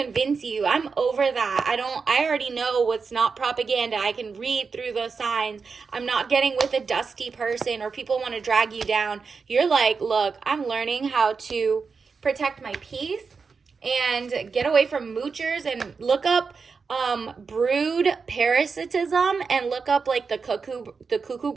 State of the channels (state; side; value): quieter; left; 5.1 dB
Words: you. I'm over that. I already know what's not propaganda. I can read through the signs. I'm not getting with a dusty person or people want to drag you down. You're like, look, I'm learning how to protect my peace and get away from moochers, and look up brood parasitism and look up, like, the cuckoo